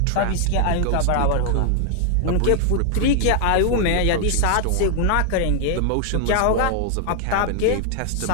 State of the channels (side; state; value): both; different; correlation 0.00